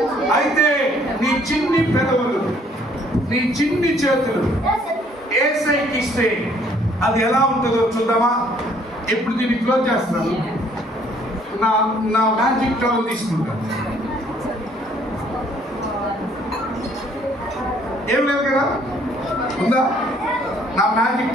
అయితే నీ చిన్ని పెదవులు, నీ చిన్ని చేతులు యేసయ్యకి ఇస్తే అది ఎలా ఉంటుందో చూద్దామా? ఇప్పుడు దీన్ని క్లోజ్ చేస్తున్నాను. నా మ్యాజిక్ టవల్ తీసుకుంటాను. ఏం లేదు కదా, ఉందా? నా మ్యాజిక్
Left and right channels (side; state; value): both; normal; correlation 0.62